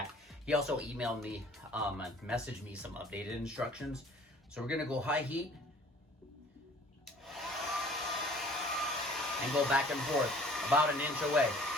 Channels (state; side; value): normal; both; correlation 0.51